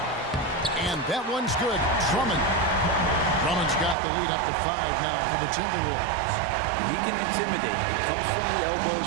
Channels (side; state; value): left; drops out; at 4.0 s